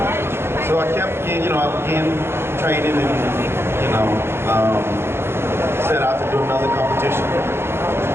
So I kept getting, I began training and, set out to do another competition.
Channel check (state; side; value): late; left; 0.12 ms